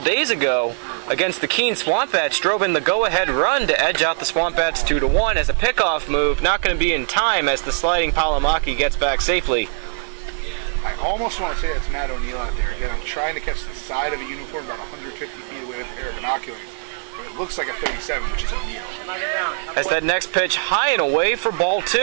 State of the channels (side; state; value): left; silent; digital silence